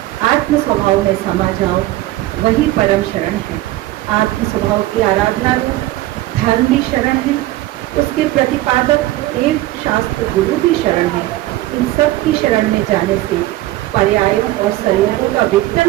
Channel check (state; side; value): quieter; left; 16.4 dB